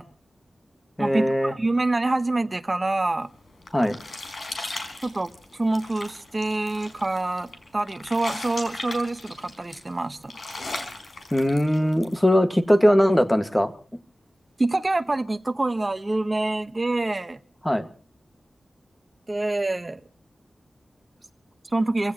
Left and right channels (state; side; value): normal; both; correlation 0.97